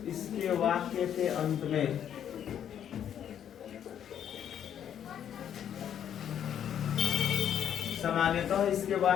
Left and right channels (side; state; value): right; quieter; 9.5 dB